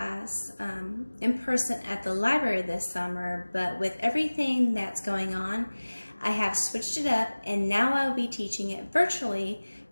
in person at the library this summer, but with everything that's going on, I have switched it up and now I'll be teaching it virtually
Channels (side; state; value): both; inverted; correlation -1.00